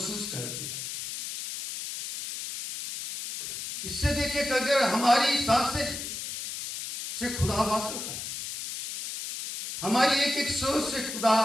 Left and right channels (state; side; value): noise; left; hiss, 7 dB below the sound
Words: करती है। इससे देखिए कि अगर हमारी सांसें से खुदा वाकिफ है, हमारी एक एक सोच से खुदा